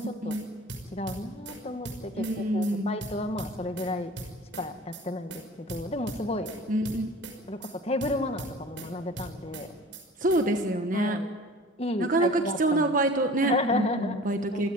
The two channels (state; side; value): normal; both; correlation 0.43